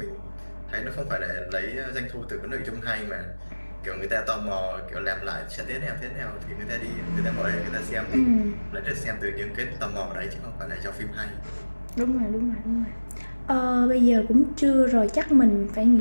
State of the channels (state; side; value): inverted; both; correlation -1.00